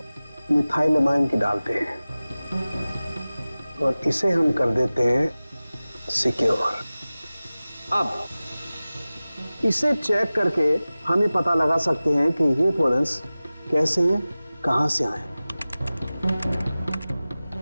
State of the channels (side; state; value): both; inverted; correlation -0.97